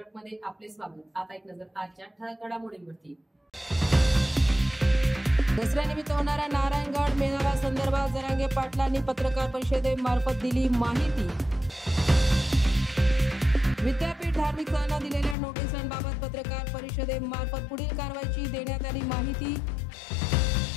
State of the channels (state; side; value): drops out; right; at 15.4 s